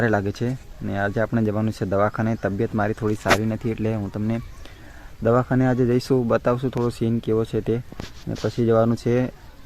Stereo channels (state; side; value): identical; both; correlation 1.00